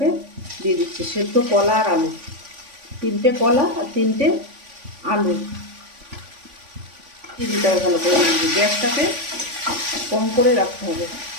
দিয়ে দিচ্ছি। সেদ্ধ কলা আর আলু, তিনটে কলা আর তিনটে আলু দিয়ে দিতে হবে ভালো করে। গ্যাসটাকে কম করে রাখতে হবে।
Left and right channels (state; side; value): late; left; 3.5 ms